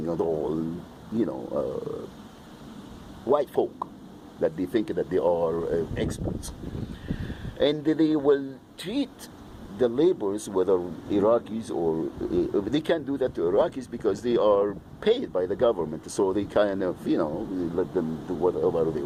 and all, white folk that they think that they are experts. And they will treat the laborers, whether Iraqis or, they can't do that to Iraqis because they are paid by the government, so they kind of, let them do whatever they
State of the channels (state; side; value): identical; both; correlation 1.00